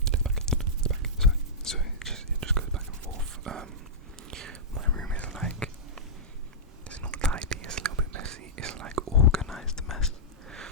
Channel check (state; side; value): normal; both; correlation -0.14